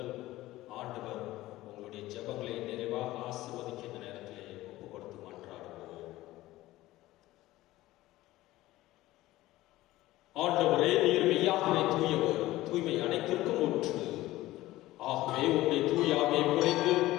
ஆண்டவர் உங்களுடைய ஜெபங்களை நிறைவாக ஆசீர்வதிக்க இந்த நேரத்திலே ஒப்புக் கொடுத்து மன்றாடுவோம். ஆண்டவரே, நீர் மெய்யாகவே தூயவர், தூய்மை அனைத்திற்கும் ஊற்று. ஆகவே உம்முடைய தூய ஆவியை பொழிந்து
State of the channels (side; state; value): right; quieter; 16.8 dB